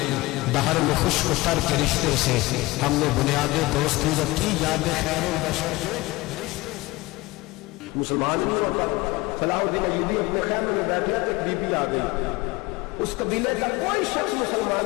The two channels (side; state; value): right; quieter; 20.9 dB